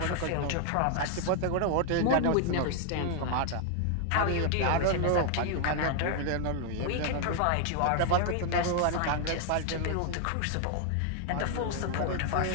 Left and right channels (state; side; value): different; both; correlation 0.00